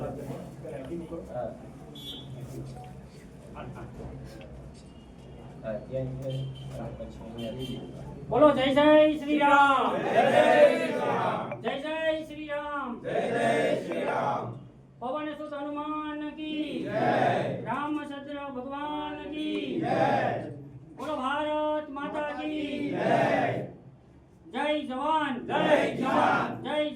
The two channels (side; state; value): both; identical; correlation 1.00